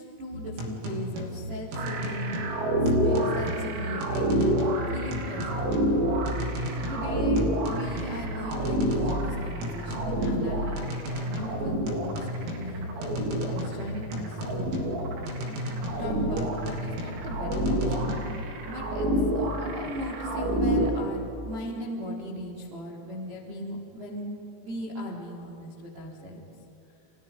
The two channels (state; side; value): late; left; 18 ms